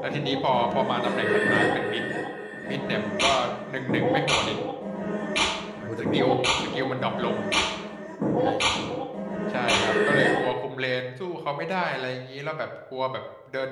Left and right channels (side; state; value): both; identical; correlation 1.00